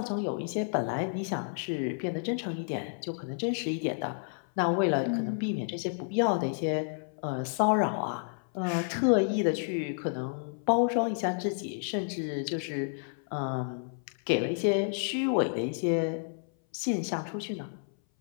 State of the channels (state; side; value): silent; right; 57 dB below the other